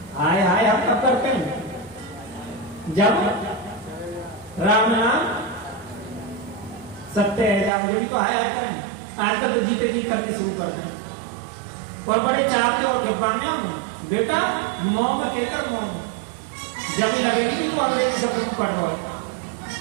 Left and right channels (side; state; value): left; drops out; at 7.7 s